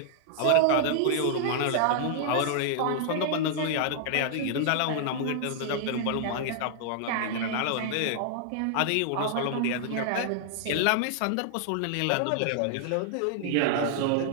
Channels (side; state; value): both; different; correlation -0.01